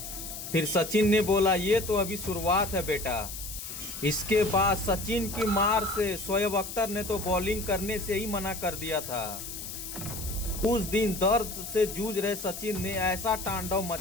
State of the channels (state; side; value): noise; left; hiss, 9 dB below the sound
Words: फिर सचिन ने बोला, ये तो अभी शुरुआत है बेटा। इसके बाद सचिन की मार से शोएब अख्तर ने तो बॉलिंग करने से ही मना कर दिया था। उस दिन दर्द से जूझ रहे सचिन ने ऐसा तांडव